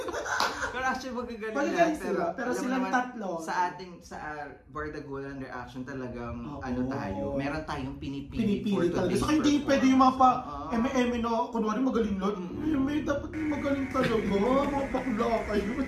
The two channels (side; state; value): both; identical; correlation 1.00